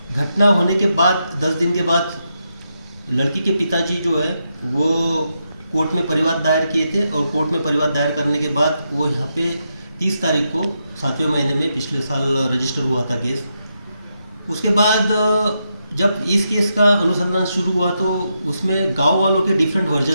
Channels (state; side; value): inverted; both; correlation -0.83